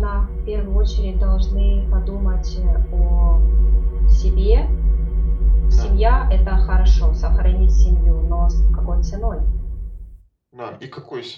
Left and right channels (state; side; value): identical; both; correlation 1.00